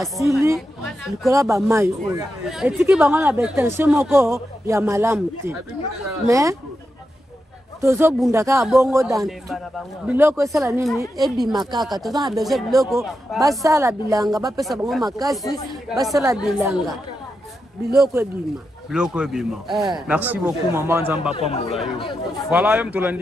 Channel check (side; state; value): both; normal; correlation 0.87